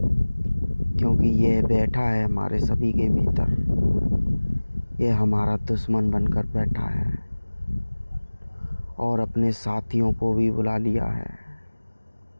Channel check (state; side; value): inverted; both; correlation -1.00